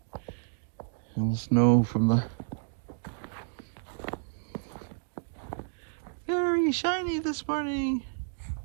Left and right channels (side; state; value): left; silent; digital silence